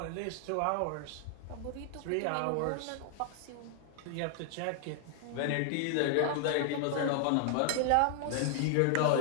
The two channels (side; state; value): both; different; correlation 0.00